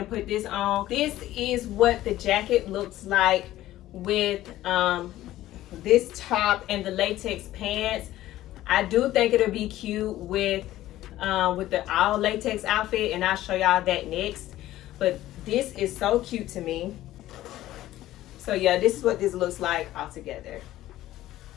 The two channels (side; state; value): right; quieter; 14.7 dB